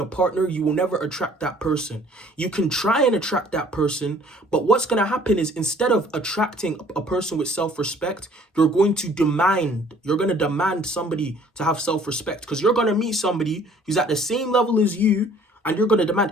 partner, you will never attract that person. You can try and attract that person, but what's going to happen is, instead of attracting a person with self-respect, you're going to demand somebody to have self-respect, because you're going to meet somebody who's at the same level as you, and you're going to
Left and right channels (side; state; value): both; normal; correlation 0.55